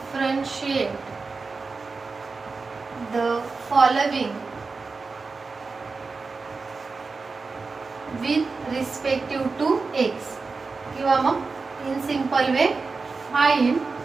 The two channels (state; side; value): quieter; left; 4.3 dB